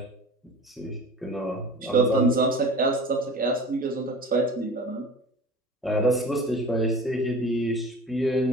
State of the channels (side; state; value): both; normal; correlation 0.38